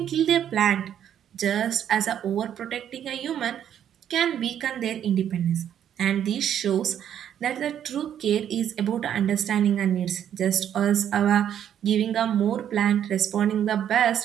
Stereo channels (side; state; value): left; quieter; 9.8 dB